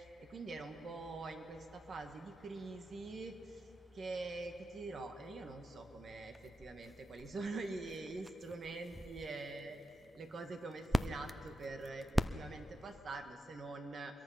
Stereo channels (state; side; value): normal; both; correlation 0.90